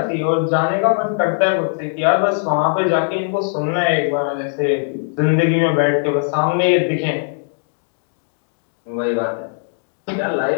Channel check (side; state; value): right; silent; digital silence